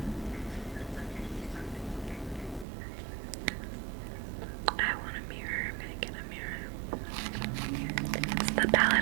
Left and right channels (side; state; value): left; drops out; at 2.7 s